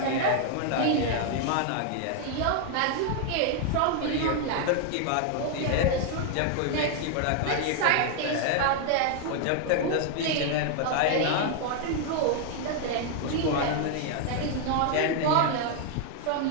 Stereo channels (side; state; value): both; different; correlation 0.00